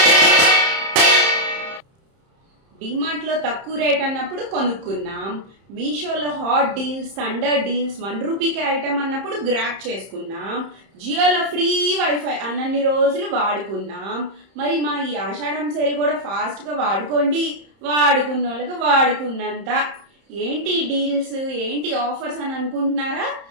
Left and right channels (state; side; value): late; left; 30 ms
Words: డిమార్ట్లో తక్కువ రేట్ అన్నప్పుడు కొనుక్కున్నాం, మీషోలో హాట్ డీల్స్, థండర్ డీల్స్, 1 రూపీకే ఐటమ్ అన్నప్పుడు గ్రాప్ చేసుకున్నాం, జియోలో ఫ్రీ వైఫై అన్నన్ని రోజులు వాడుకున్నాం. మరి మా ఈ ఆషాఢం సేల్ కూడా ఫాస్ట్గా వాడుకోండి, వాడుకున్న వాళ్ళకి వాడుకున్నంత. ఏంటి డీల్స్, ఏంటి ఆఫర్స్ అని అనుకుంటున్నారా?